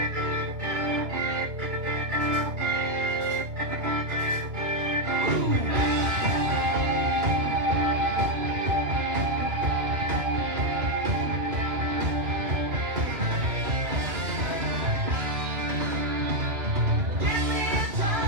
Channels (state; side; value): late; left; 2.3 ms